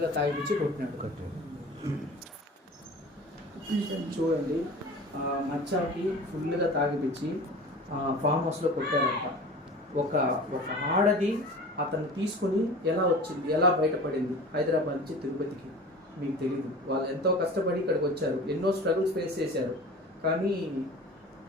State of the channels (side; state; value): both; normal; correlation 0.38